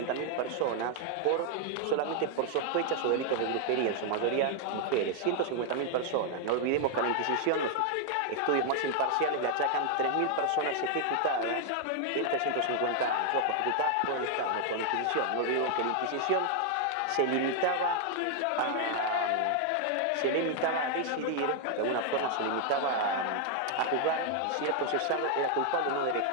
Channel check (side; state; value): both; different; correlation 0.00